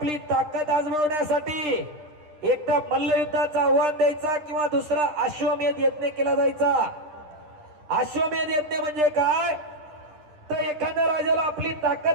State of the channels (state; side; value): late; left; 9.9 ms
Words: ताकद आजमावण्यासाठी एक तर मल्लयुद्धाचं आव्हान द्यायचा किंवा दुसरा अश्वमेध यज्ञ केला जायचा. अश्वमेध यज्ञ म्हणजे काय, तर एखाद्या राजाला आपली